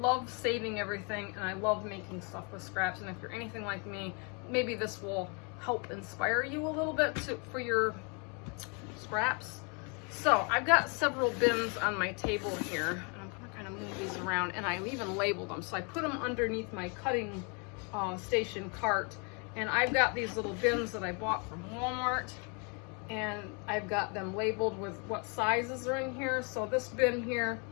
saving everything and I love making stuff with scraps. And if you're anything like me, maybe this will help inspire you a little bit for your scraps. So I've got several bins on my table here, and I'm gonna kind of move these around, and I even labeled them. So I put them underneath my cutting station cart, and I've got these little bins that I bought from Walmart, and I've got them labeled with what sizes are in here. So this bin here,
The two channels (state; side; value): quieter; right; 34.7 dB